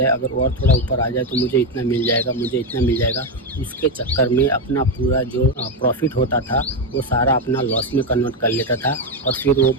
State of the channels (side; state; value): both; normal; correlation 0.09